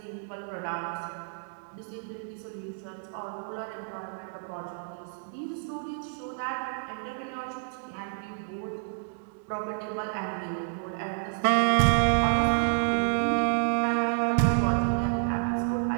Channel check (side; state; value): left; silent; digital silence